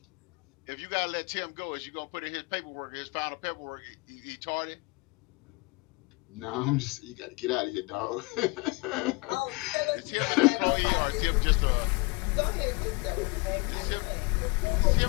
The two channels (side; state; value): right; quieter; 26.4 dB